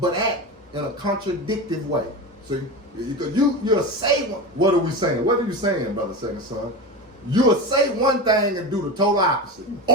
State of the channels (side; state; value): both; normal; correlation 0.24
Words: act in a contradictive way. See, because you'll say, what are we saying? What are you saying, brother second son? You'll say one thing and do the total opposite.